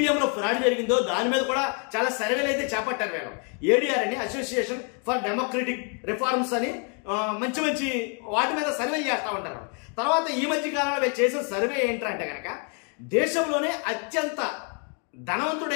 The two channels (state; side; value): quieter; right; 39.5 dB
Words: ఫ్రాడ్ జరిగిందో దాని మీద కూడా చాలా సర్వేలు అయితే చేపట్టారు వీళ్ళు. ఏడీఆర్ అని అసోసియేషన్ ఫర్ డెమోక్రటిక్ రిఫార్మ్స్ అని మంచి మంచి వాటి మీద సర్వేలు చేస్తూ ఉంటారు. తర్వాత ఈ మధ్య కాలంలో వీళ్ళు చేసిన సర్వే ఏంటంటే కనుక దేశంలోనే అత్యంత